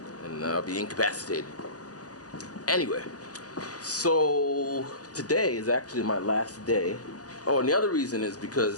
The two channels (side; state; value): right; late; 0.67 ms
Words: and I'll be incapacitated. Anyway, so today is actually my last day. Oh, and the other reason is